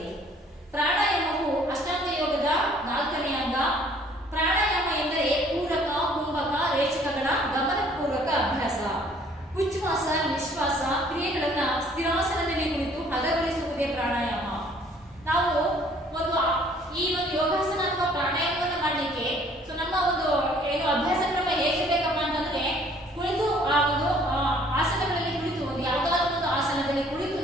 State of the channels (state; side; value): normal; both; correlation 0.58